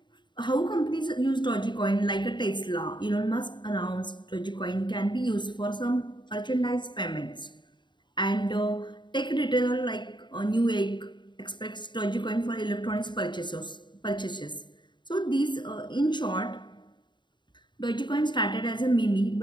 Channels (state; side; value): late; right; 0.22 ms